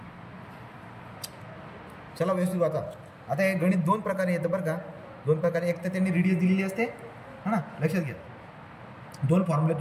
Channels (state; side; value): identical; both; correlation 1.00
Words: चला व्यवस्थित वाचा. आता हे गणित दोन प्रकारे येतं बरं का. दोन प्रकारे, एक तर त्यांनी रेडियस दिलेली असते हा ना, लक्षात घ्या. दोन फॉर्म्युले